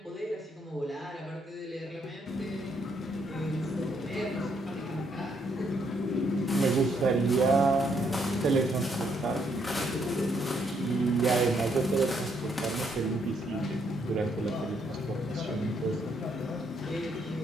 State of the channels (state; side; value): normal; both; correlation 0.73